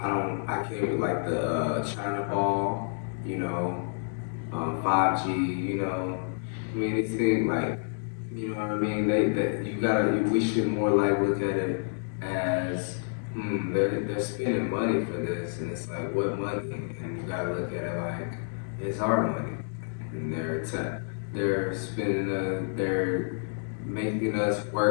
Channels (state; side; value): silent; right; digital silence